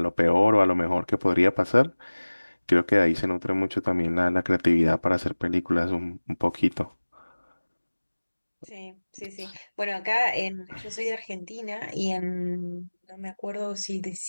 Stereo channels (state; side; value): inverted; both; correlation -1.00